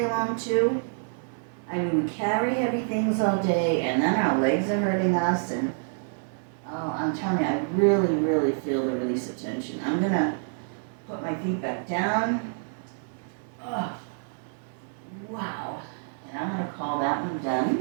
long too, I mean, we carry heavy things all day, and then our legs are hurting us, and oh, I'm telling you, I really, really feel the release of tension. I'm gonna put my feet back down. Oh, wow. And I'm gonna call that one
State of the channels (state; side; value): silent; left; digital silence